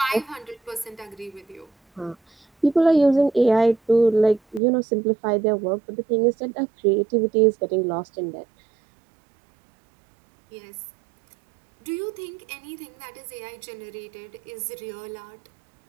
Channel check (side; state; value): left; drops out; at 4.6 s